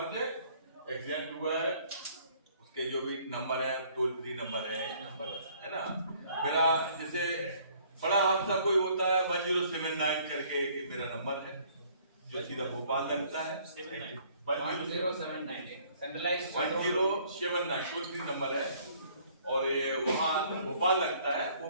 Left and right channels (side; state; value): both; inverted; correlation -0.60